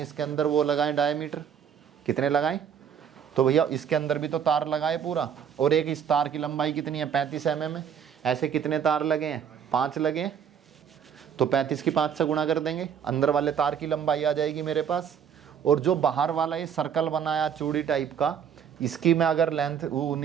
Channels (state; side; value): quieter; left; 8.1 dB